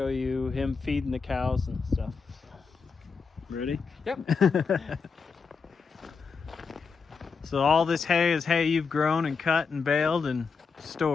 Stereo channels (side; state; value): right; quieter; 5.3 dB